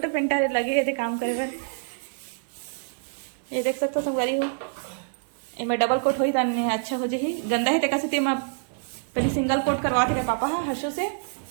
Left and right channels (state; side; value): silent; left; digital silence